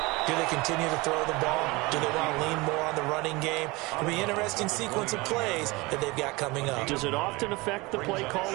Do they continue to throw the ball? Do they want to lean more on the running game? It'll be an interesting sequence of plays that they've got coming up. Does it often affect the play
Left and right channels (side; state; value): left; quieter; 23.6 dB